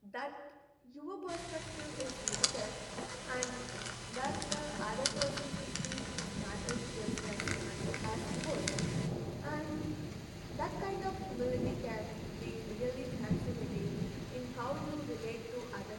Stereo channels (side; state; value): both; identical; correlation 1.00